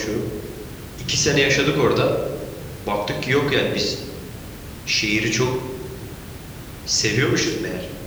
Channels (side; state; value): both; identical; correlation 1.00